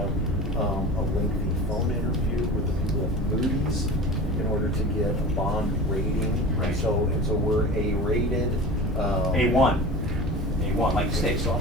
a lengthy phone interview with the people at Moody's in order to get a bond rating. Right. So we're A-rated. A1, like the steak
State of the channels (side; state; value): both; normal; correlation 0.35